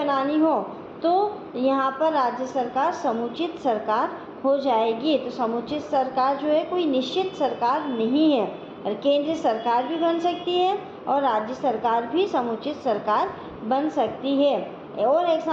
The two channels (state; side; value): identical; both; correlation 1.00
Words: हो तो यहाँ पर राज्य सरकार समुचित सरकार हो जाएगी। तो समुचित सरकार जो है कोई निश्चित सरकार नहीं है, और केंद्रीय सरकार भी बन सकती है और राज्य सरकार भी समुचित सरकार बन सकती है। और